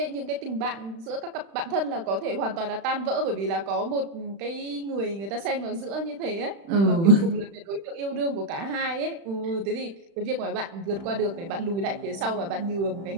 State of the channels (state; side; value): late; left; 36 ms